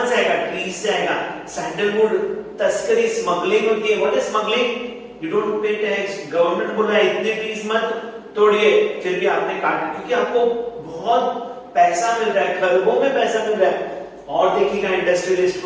से आएगा? ट्रीज से आएगा. सैंडलवुड, तस्करी, स्मगलिंग होती है. What is smuggling? You don't pay tax. Government बोल रहा है इतने ट्रीज मत तोड़िए, फिर भी आपने काटा, क्योंकि आपको बहुत पैसा मिल रहा है, खरबों में पैसा मिल रहा है. और देखिएगा इंडस्ट्रियलिस्ट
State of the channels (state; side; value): identical; both; correlation 1.00